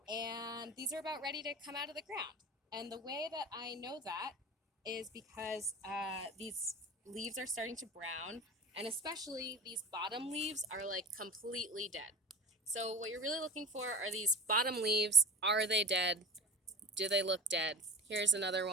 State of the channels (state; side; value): normal; both; correlation 0.30